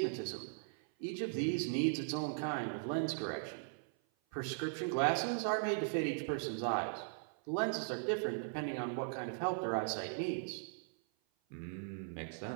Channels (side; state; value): left; silent; 52 dB below the other